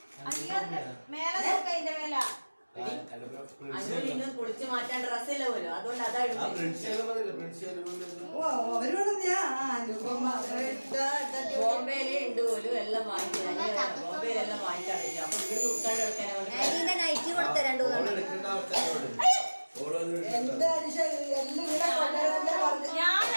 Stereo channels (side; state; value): both; inverted; correlation -1.00